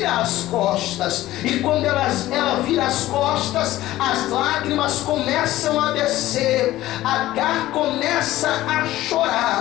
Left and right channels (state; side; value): quieter; right; 15.5 dB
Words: as costas, e quando ela vira as costas, as lágrimas começam a descer. Agar começa a